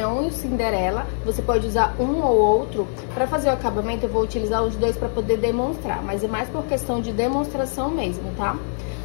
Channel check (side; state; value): right; silent; digital silence